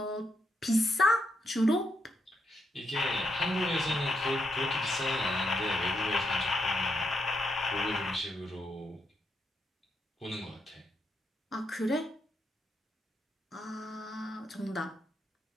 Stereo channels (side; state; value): both; normal; correlation 0.80